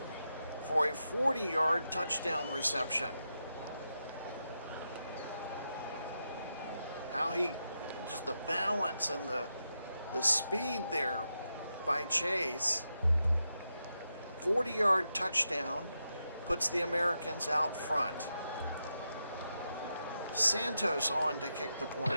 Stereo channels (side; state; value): both; inverted; correlation -0.86